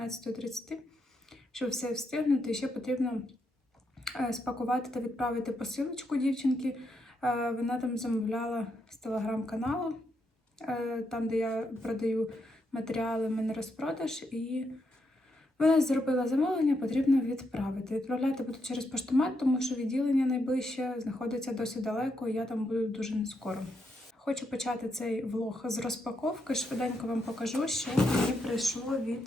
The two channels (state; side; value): normal; both; correlation 0.81